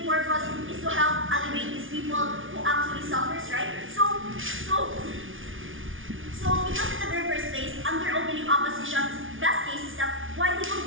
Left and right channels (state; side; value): late; left; 0.57 ms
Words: purpose is to help alleviate these people who actually suffers, right? So because in the very first place, under opening opposition's best case is that why they